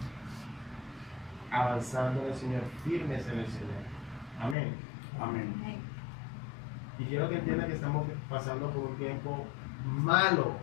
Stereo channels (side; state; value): right; drops out; at 4.5 s